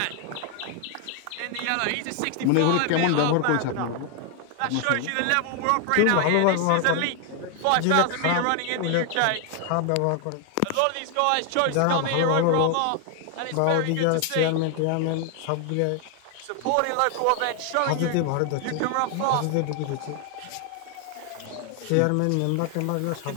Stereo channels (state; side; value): different; both; correlation 0.00